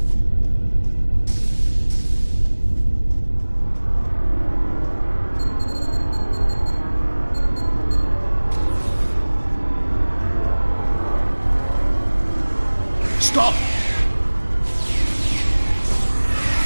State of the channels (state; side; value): inverted; both; correlation -1.00